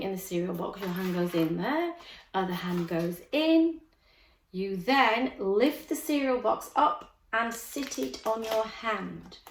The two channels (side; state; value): both; identical; correlation 1.00